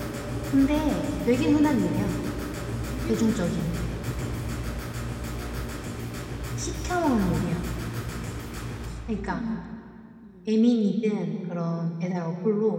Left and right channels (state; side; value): identical; both; correlation 1.00